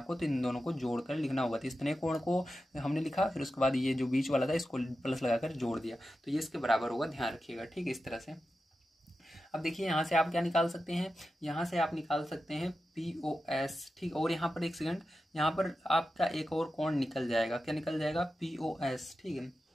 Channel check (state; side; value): normal; both; correlation 0.91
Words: तो इन दोनों को जोड़ कर लिखना होगा। तो इतने कोण को हमने लिखा, फिर उसके बाद ये जो बीच वाला था इसको प्लस लगाकर जोड़ दिया, तो ये इसके बराबर होगा, ध्यान रखिएगा, ठीक है, इस तरह से। अब देखिए यहाँ से आप क्या निकाल सकते हैं, यहाँ से आप निकाल सकते हैं POS, ठीक, और यहाँ पर एक सेकंड, यहाँ पर आपका एक और कोण निकल जाएगा, क्या निकल जाएगा, POS, ठीक है।